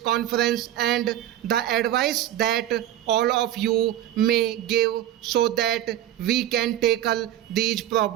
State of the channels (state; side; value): quieter; left; 12.3 dB